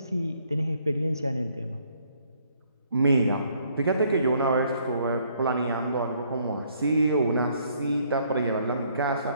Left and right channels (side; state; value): both; inverted; correlation -0.67